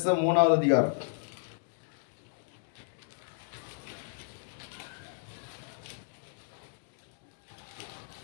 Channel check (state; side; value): silent; right; digital silence